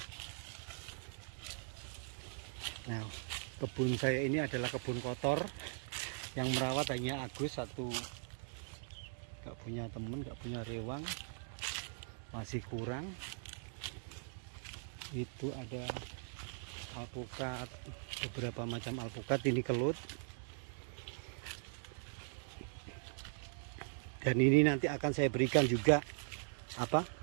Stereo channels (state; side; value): silent; left; 51 dB below the other